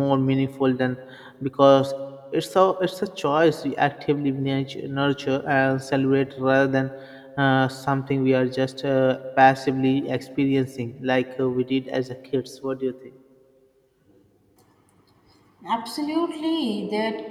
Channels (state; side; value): identical; both; correlation 1.00